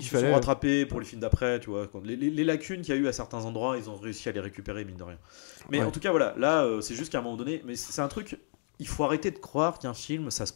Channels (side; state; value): right; silent; digital silence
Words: qui se sont rattrapés pour les films d'après, tu vois. Les lacunes qu'il y a eu à certains endroits, ils ont réussi à les récupérer, mine de rien. Mais Ouais. en tout cas, voilà, là, c'est juste qu'à un moment donné, mais c'est un truc. Il faut arrêter de croire qu'un film, ça se